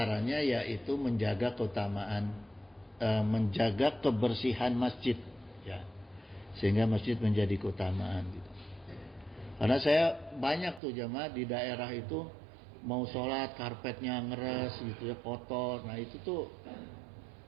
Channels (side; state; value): left; drops out; at 10.8 s